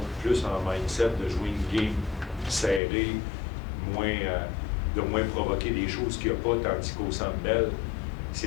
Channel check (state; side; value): drops out; right; at 2.8 s